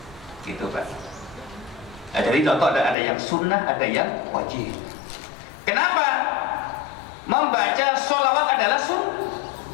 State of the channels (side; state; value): right; drops out; at 3.0 s